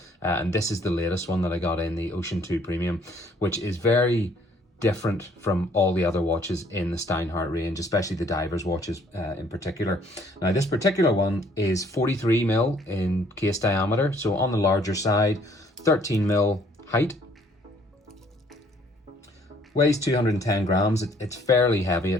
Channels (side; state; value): both; normal; correlation 0.61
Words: and this is the latest one that I got in, the Ocean 2 Premium, which is very different from all the other watches in the Steinhardt range, especially the divers watches in particular. Now this particular one is 43mm in case diameter, so on the larger side, 13mm height. Weighs 210 grams, it's fairly heavy,